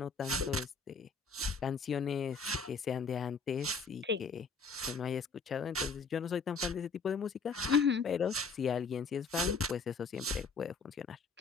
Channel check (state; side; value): quieter; right; 4.6 dB